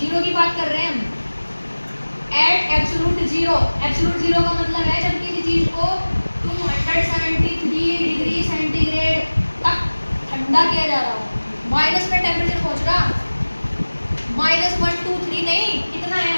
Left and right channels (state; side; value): inverted; both; correlation -1.00